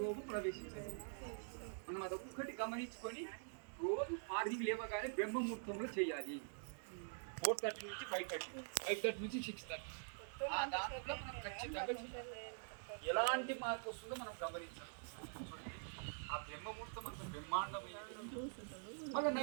రోగం ప్రవేశించాలి మనం అదొక్కటి గమనించుకొని రోజు మార్నింగ్ లేవగానే బ్రహ్మముహూర్తంలో చేయాలి. 4:30 నుంచి 5:30, 5:30 నుంచి 6:30. దాంట్లో మనం ఖచ్చితంగా చేయాలి. ఎలాంటి మార్పు వస్తుందో మనం గమనించాలి. ఆ బ్రహ్మముహూర్తం అంత బ్రహ్మాండమైనది. మళ్ళీ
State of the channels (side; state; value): left; silent; digital silence